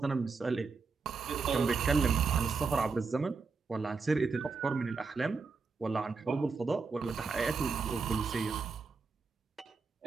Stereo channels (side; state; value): left; quieter; 4.6 dB